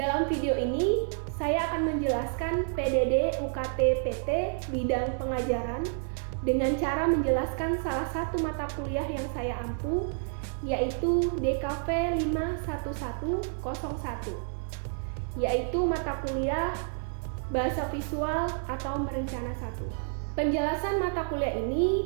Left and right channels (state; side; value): silent; left; digital silence